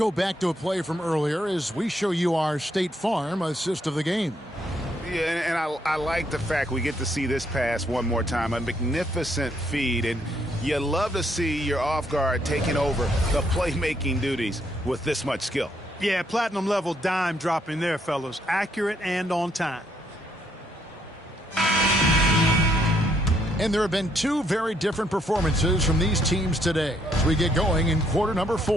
back to a play from earlier as we show you our State Farm assist of the game. Yeah, and I like the fact we get to see this pass one more time. A magnificent feed, and you love to see your off guard taking over the playmaking duties with this much skill. Yeah, platinum level dime dropping there, fellas. Accurate and on time. And there have been two very different performances from these teams today as we get going in quarter number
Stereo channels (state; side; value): normal; both; correlation 0.72